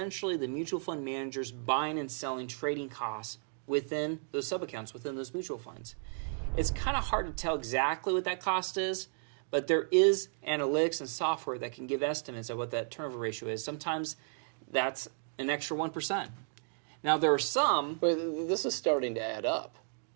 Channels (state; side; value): silent; left; digital silence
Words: the mutual fund manager's buying and selling trading costs within those sub-accounts, within those mutual funds. It's kind of hard to tell exactly what that cost is, but there is analytics and software that can give estimates of what that turnover ratio is. Sometimes that's an extra 1%. Now, there are some... But this is starting to add up.